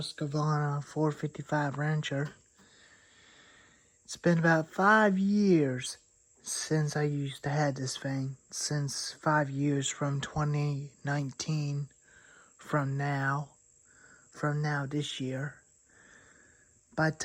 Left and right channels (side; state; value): both; identical; correlation 1.00